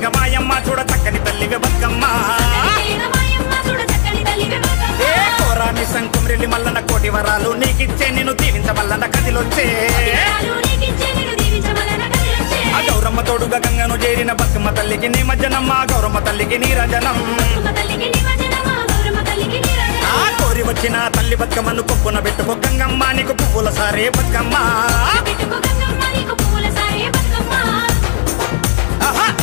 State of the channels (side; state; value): right; silent; digital silence